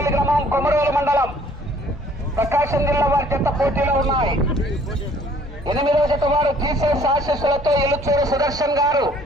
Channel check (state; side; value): normal; both; correlation 0.58